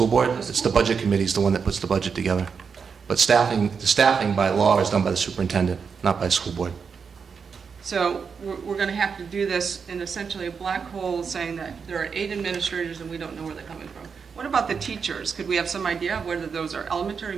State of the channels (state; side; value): quieter; left; 5.9 dB